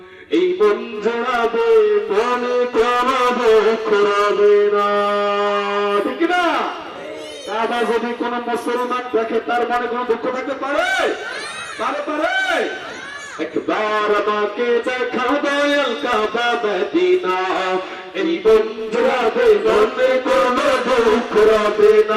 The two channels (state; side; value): identical; both; correlation 1.00